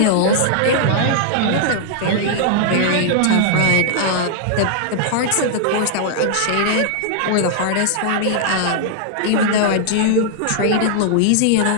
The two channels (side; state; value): both; different; correlation -0.01